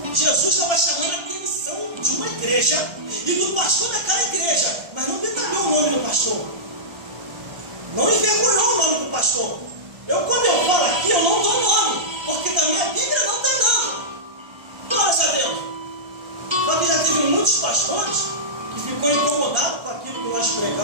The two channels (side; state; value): left; late; 1.3 ms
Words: Jesus estava chamando a atenção de uma igreja e do pastor daquela igreja, mas não detalhou o nome do pastor. Não envergonhou o nome do pastor. Quando eu falo aqui, eu não dou nome, porque da minha Bíblia não tem nome. Glórias a Deus. Só que já teve muitos pastores que ficou incomodado com aquilo que nós pregamos.